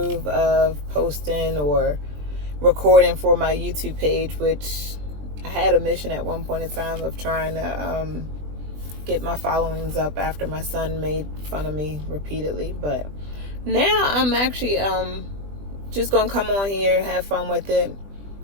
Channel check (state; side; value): late; left; 20 ms